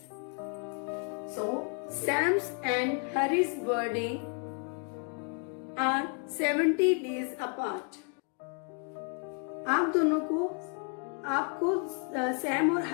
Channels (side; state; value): right; quieter; 38.5 dB